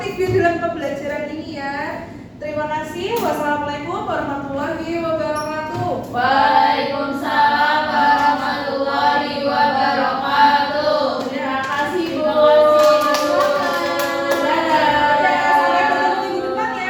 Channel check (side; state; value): both; identical; correlation 1.00